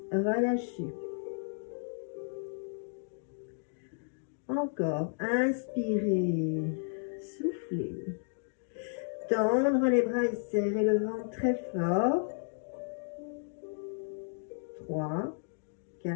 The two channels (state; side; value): silent; right; digital silence